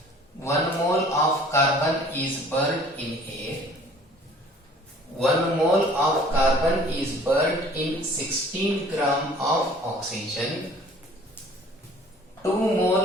1 mole of carbon is burned in air. 1 mole of carbon is burned in 16 gram of oxygen. 2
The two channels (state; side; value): normal; both; correlation 0.51